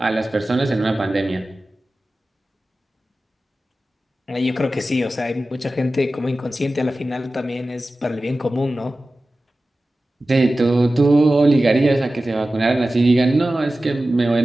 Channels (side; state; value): both; normal; correlation 0.95